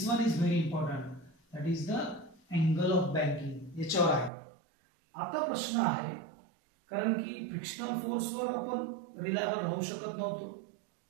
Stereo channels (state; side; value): drops out; left; at 4.3 s